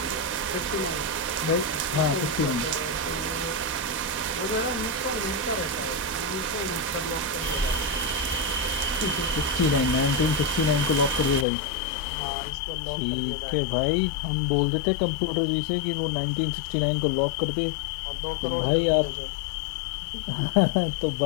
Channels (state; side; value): drops out; right; at 11.5 s